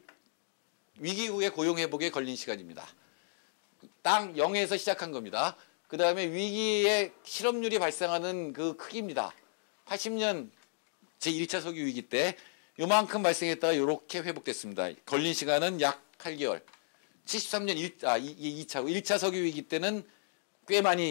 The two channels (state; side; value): silent; right; digital silence